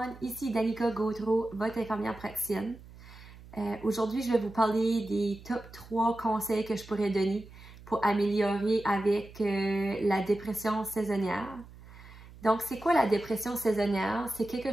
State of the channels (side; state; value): right; noise; hum, 19 dB below the sound